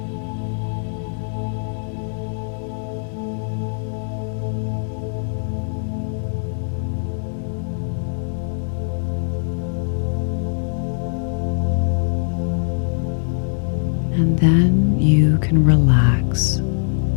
And then you can relax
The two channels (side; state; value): right; silent; digital silence